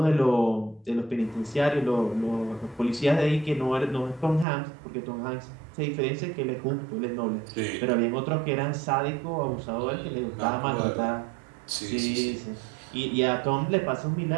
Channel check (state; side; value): drops out; left; at 4.5 s